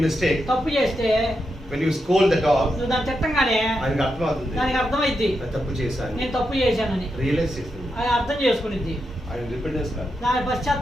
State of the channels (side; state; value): both; normal; correlation 0.85